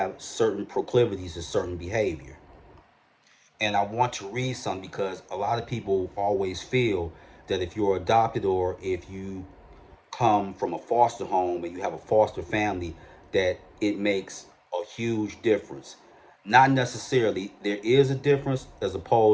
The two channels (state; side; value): identical; both; correlation 1.00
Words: certain proclivities to certain behavior. And I want to read some because a lot of people always feel that if you're adopted or if you come from a foster home and you have a foster family, that it makes a huge difference. Not necessarily. There is a difference as